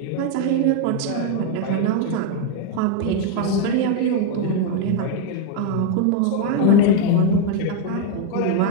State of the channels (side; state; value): both; different; correlation 0.01